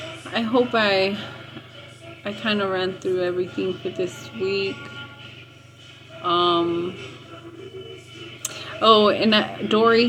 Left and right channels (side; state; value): both; identical; correlation 1.00